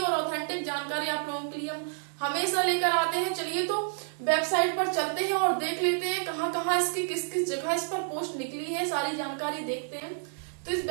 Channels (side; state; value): left; silent; 58 dB below the other